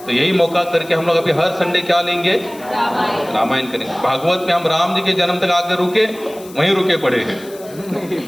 तो यही मौका करके हम लोग अभी हर संडे क्या लेंगे? रामायण करेंगे। भागवत में हम राम जी के जन्म तक आकर रुके, वहीं रुके पड़े हैं,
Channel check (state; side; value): noise; left; hiss, 21 dB below the sound